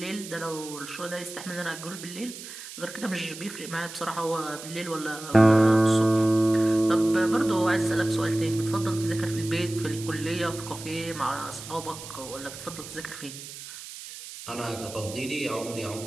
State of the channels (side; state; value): right; noise; hiss, 12 dB below the sound